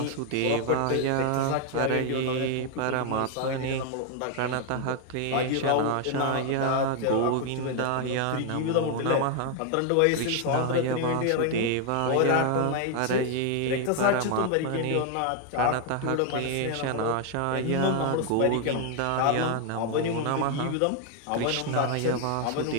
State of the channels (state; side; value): different; both; correlation 0.00